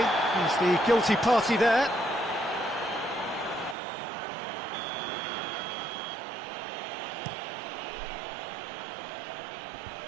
he's the guilty party there.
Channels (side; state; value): left; drops out; at 3.8 s